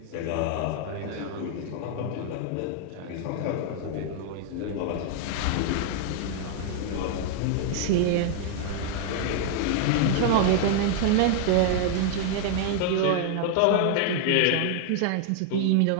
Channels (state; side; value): different; both; correlation 0.00